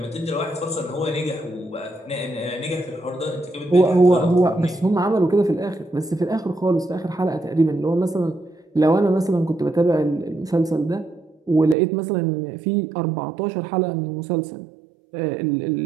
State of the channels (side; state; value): left; drops out; at 11.8 s